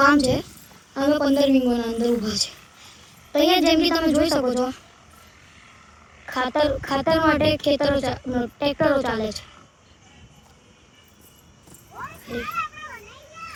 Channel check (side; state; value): both; identical; correlation 1.00